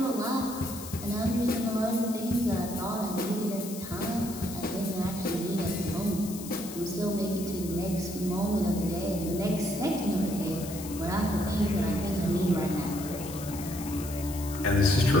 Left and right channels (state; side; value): noise; left; hiss, 12 dB below the sound